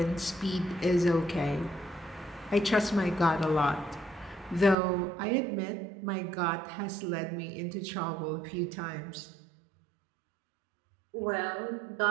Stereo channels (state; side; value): drops out; left; at 4.8 s